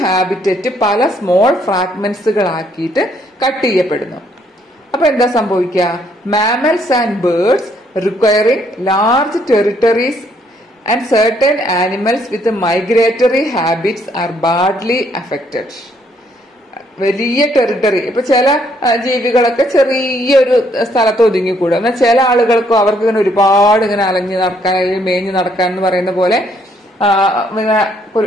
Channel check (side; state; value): both; normal; correlation 0.69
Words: ഹാബിറ്ററ്റ് പല സ്മോൾ ഫ്രാഗ്മെന്റ്സുകളാക്കിയിട്ട് കട്ട് ചെയ്യപ്പെടുന്നു. അപ്പൊ എന്താ സംഭവിക്കുക? Mammals and birds requiring large territories and certain animals with migratory habits are badly affected. വലിയ ടെറിട്ടറി, ഇപ്പൊ ചില ജീവികളൊക്കെ ചെറിയൊരു സ്ഥലത്ത് ഒതുങ്ങിക്കൂടും. എന്നാൽ ചില ആളുകൾക്കും അവർക്ക് ഇങ്ങനെ ഒരുപാട് ഇങ്ങനെ അലഞ്ഞു നടക്കാൻ, മേഞ്ഞു നടക്കാൻ എന്ന് പറയുന്ന പോലെ